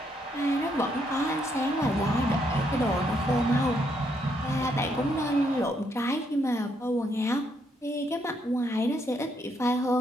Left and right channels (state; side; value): normal; both; correlation 0.74